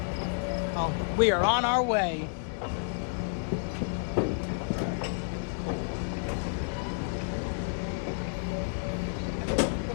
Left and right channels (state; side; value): silent; right; digital silence